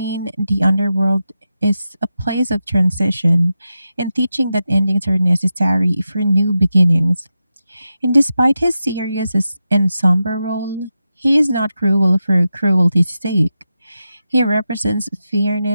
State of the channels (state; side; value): inverted; both; correlation -0.90